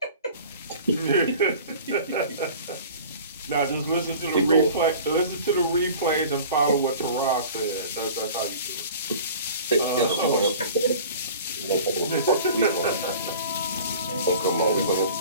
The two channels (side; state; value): both; inverted; correlation -0.43